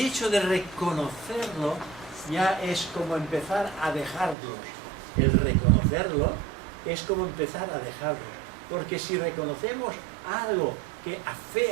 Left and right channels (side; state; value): left; drops out; at 4.4 s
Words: de reconocerlo ya es como empezar a dejarlos. El reconocerlo es como empezar a dejarlo. Porque si reconocemos algo que